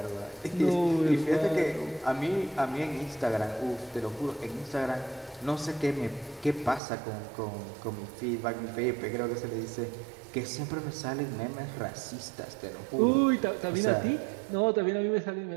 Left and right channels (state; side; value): drops out; left; at 6.8 s